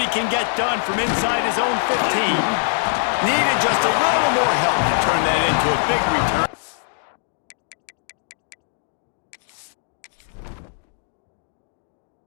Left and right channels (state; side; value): silent; right; digital silence